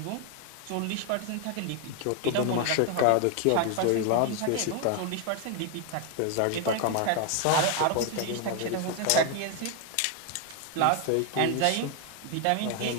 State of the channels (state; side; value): different; both; correlation 0.01